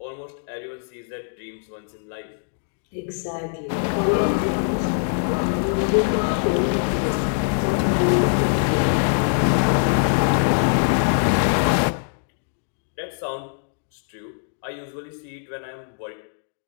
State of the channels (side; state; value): right; silent; digital silence